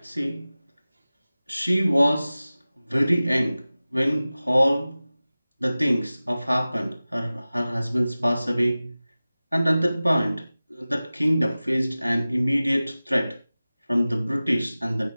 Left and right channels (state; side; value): inverted; both; correlation -0.97